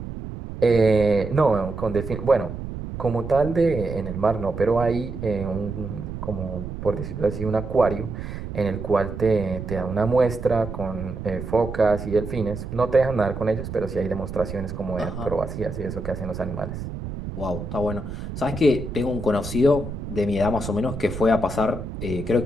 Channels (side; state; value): right; noise; rumble, 8 dB below the sound